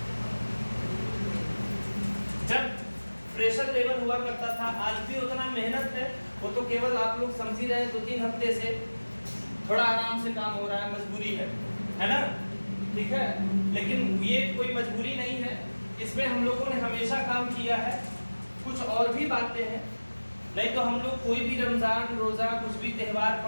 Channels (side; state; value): both; inverted; correlation -1.00